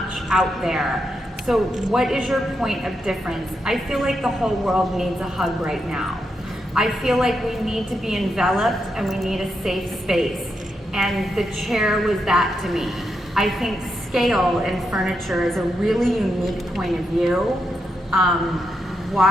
out there. So what is your point of difference? I feel like the whole world needs a hug right now. I feel like we need to be enveloped and we need a safe space. And the chair was that to me. I think scale in furniture is a really unique point of view.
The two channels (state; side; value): normal; both; correlation 0.83